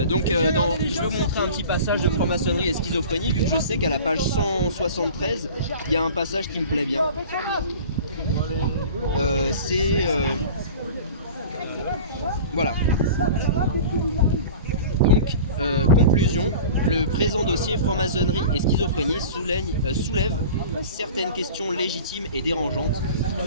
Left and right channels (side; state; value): both; inverted; correlation -0.39